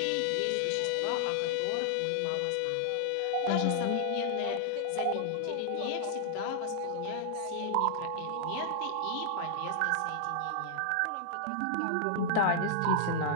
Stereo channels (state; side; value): different; both; correlation -0.01